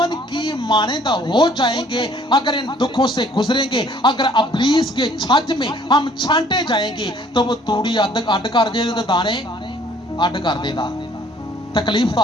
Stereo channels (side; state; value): both; normal; correlation 0.58